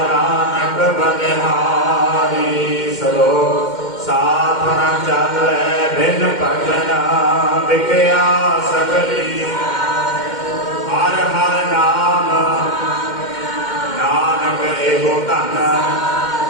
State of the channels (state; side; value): late; right; 2.1 ms